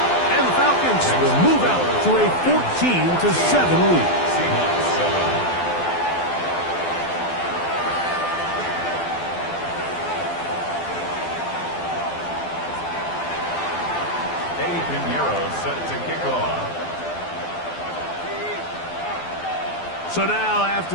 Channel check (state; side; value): late; right; 12 ms